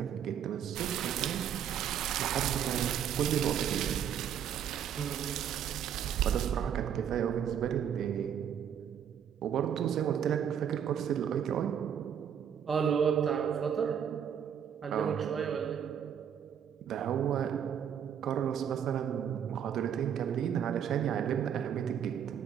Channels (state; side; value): quieter; left; 8.7 dB